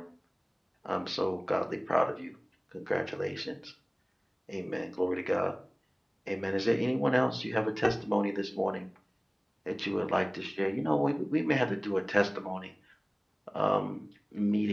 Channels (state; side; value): identical; both; correlation 1.00